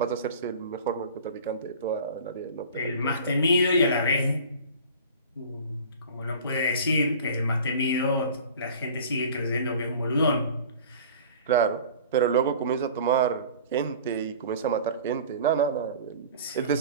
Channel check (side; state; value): both; inverted; correlation -0.41